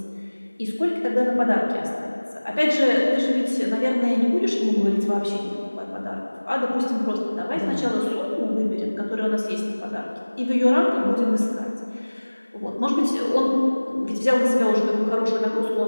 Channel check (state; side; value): inverted; both; correlation -1.00